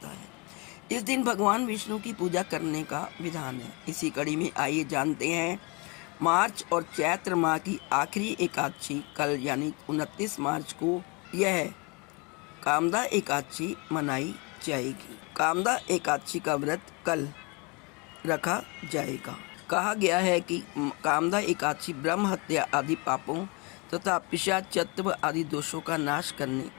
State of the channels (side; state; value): right; quieter; 29.3 dB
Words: है। इस दिन भगवान विष्णु की पूजा करने का विधान है। इसी कड़ी में आइए जानते हैं मार्च और चैत्र माह की आखिरी एकादशी कल यानी 29 मार्च को यह कामदा एकादशी मनाई जाएगी। कामदा एकादशी का व्रत कल रखा जाएगा। कहा गया है कि कामदा एकादशी ब्रह्म हत्या आदि पापों तथा पिशाचत्व आदि दोषों का नाश करने